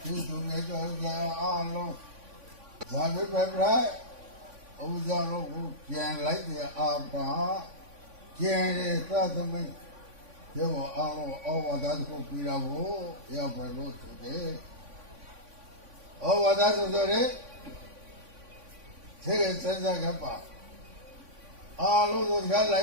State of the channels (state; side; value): late; left; 3.5 ms